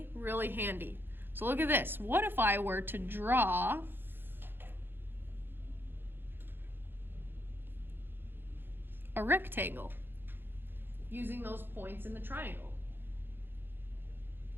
really handy. So look at this. What if I were to draw a rectangle using those points in the triangle?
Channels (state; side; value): late; left; 0.10 ms